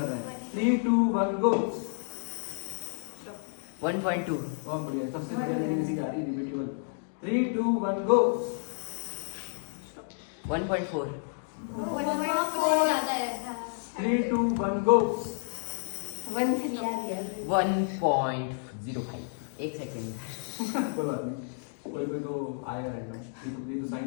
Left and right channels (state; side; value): silent; right; digital silence